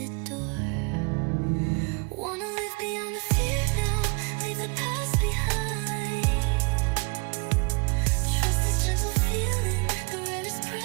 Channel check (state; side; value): quieter; left; 31.4 dB